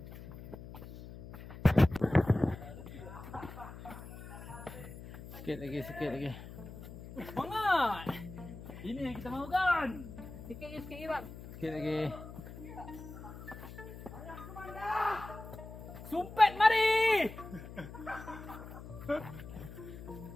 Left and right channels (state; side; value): noise; left; hum, 13 dB below the sound